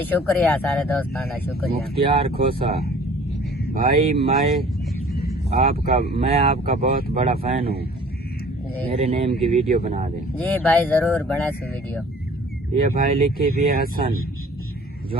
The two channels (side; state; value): both; normal; correlation 0.50